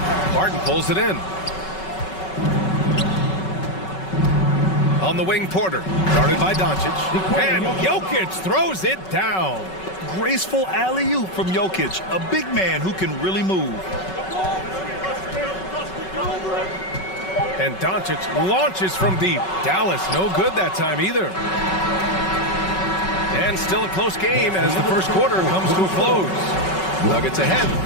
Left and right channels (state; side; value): late; right; 5.3 ms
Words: Barton pulls it in. On the wing, Porter. Guarded by Doncic. And Jokic throws it down. Graceful alley-oop from Jokic, a big man who can really move. And Doncic launches from deep. Dallas no good that time either. And still a close game as the first quarter comes to a close. Nuggets ahead,